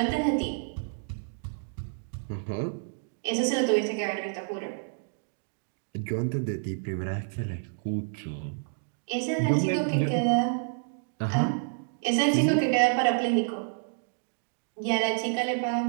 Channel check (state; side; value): silent; left; digital silence